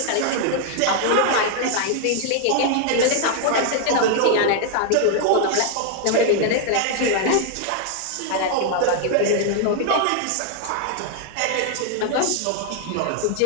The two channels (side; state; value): both; different; correlation 0.00